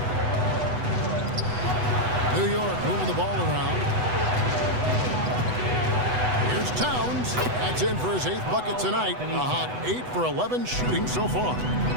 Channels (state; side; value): late; left; 8.0 ms